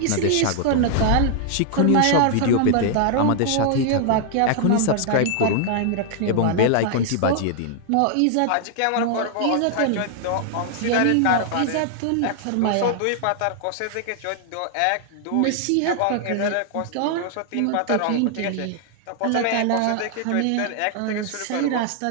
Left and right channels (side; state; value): both; different; correlation 0.00